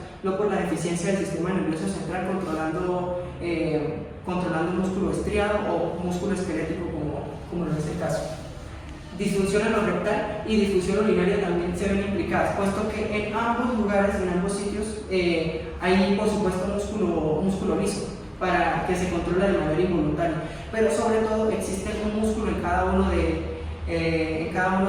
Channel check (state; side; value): identical; both; correlation 1.00